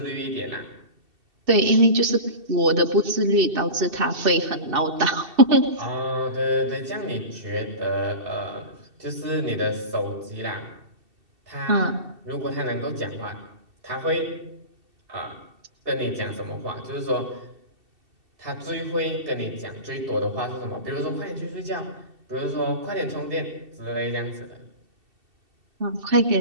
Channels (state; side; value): late; left; 2.7 ms